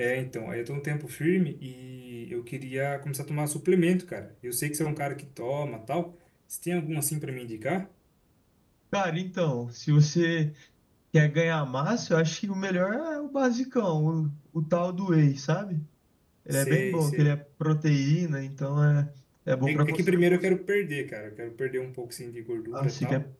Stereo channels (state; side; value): identical; both; correlation 1.00